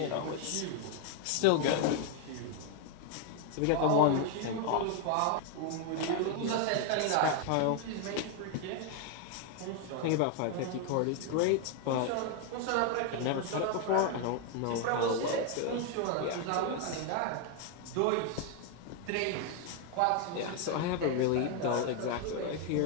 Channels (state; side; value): different; both; correlation 0.01